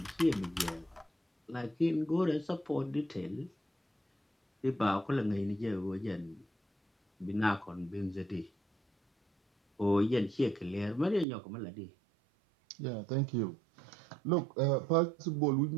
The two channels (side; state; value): left; drops out; at 11.2 s